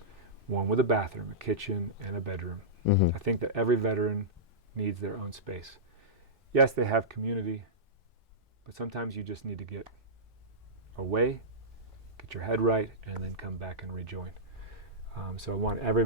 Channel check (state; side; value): normal; both; correlation -0.14